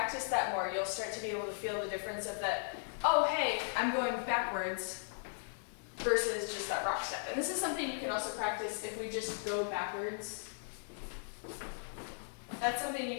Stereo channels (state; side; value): silent; right; digital silence